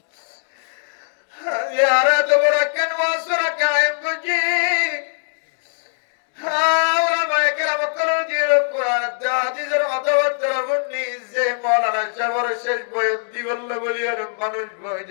यारा तो बड़ा कनवासरा कायम गुजी हावरा मायकरा मकरो जीरो कुरान दादी जरा अतवत्तर बुन्नी जे मौलाना शबर शेष बयन दिवल्ला बलियार मानुष बय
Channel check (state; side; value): silent; right; digital silence